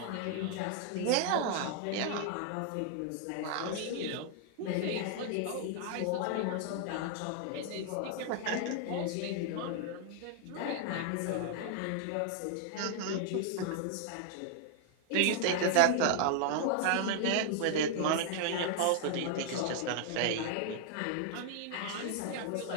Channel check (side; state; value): both; different; correlation 0.00